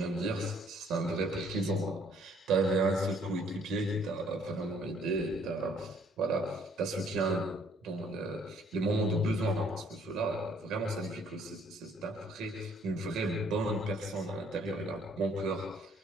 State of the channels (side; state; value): both; normal; correlation 0.63